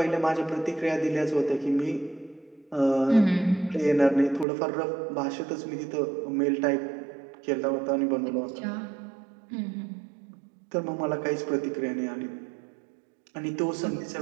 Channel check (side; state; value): left; drops out; at 4.5 s